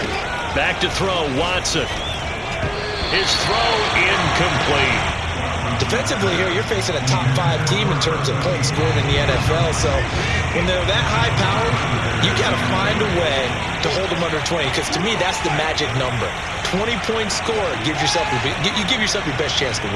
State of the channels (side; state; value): both; identical; correlation 1.00